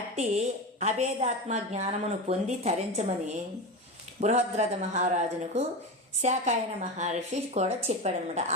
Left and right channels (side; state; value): both; normal; correlation 0.22